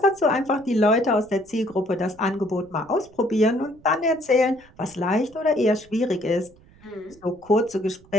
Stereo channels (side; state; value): right; noise; rumble, 27 dB below the sound